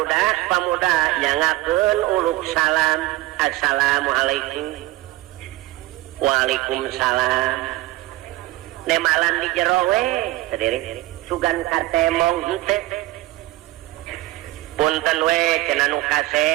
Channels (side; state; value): left; quieter; 18.1 dB